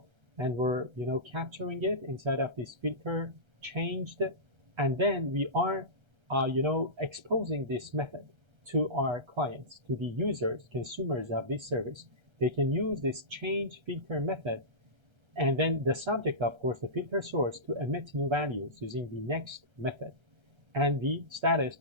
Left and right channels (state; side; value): late; left; 1.3 ms